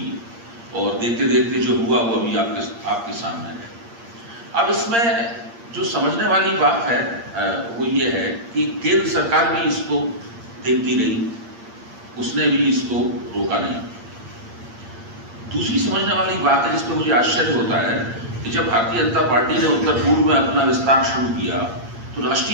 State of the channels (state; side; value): late; left; 8.7 ms